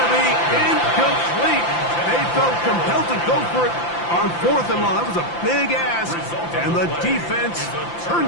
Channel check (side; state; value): right; late; 5.8 ms